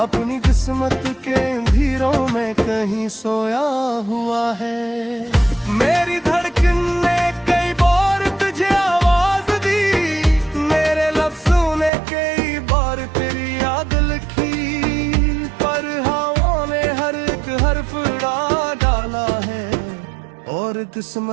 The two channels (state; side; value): drops out; left; at 11.9 s